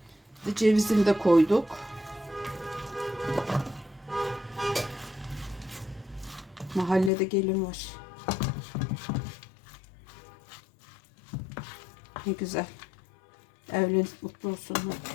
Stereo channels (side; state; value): right; drops out; at 7.1 s